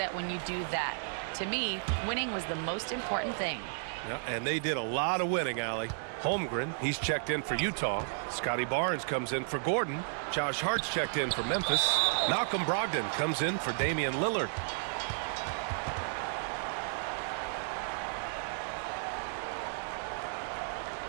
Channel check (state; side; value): silent; left; digital silence